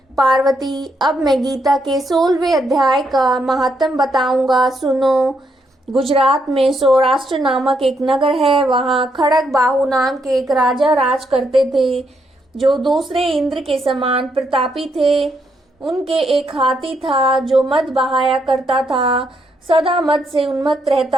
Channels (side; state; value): both; normal; correlation 0.77